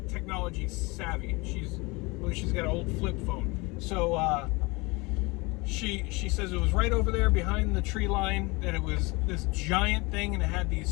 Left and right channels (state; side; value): quieter; right; 25.5 dB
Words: technology savvy. She's got an old flip phone. So she says it was right over there behind the tree line, that it was this giant thing and it had